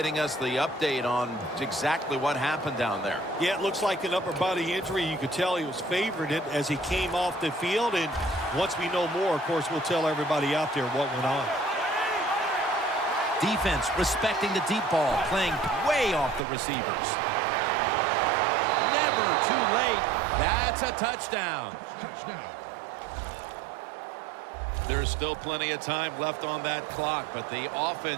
us the update on exactly what happened down there. Yeah, it looks like an upper body injury. You could tell he was favored it as he came off the field. And once we know more, of course, we'll tell everybody out there what went on. Defense respecting the deep ball, playing way off the receivers. Never too late. That's a touchdown. There's still plenty of time left on that clock, but the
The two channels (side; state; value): left; drops out; at 16.4 s